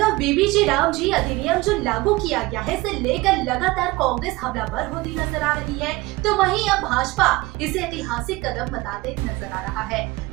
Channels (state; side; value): quieter; left; 21.2 dB